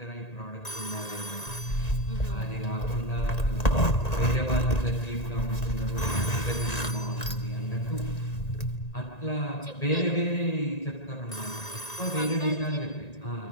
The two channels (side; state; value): right; late; 1.9 ms